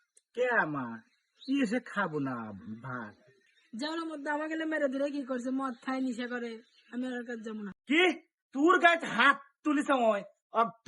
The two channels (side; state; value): both; identical; correlation 1.00